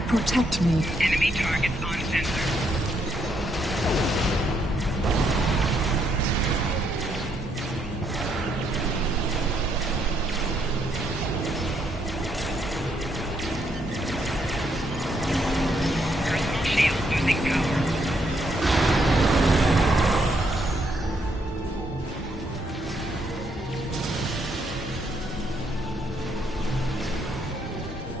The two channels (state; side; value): normal; both; correlation 0.74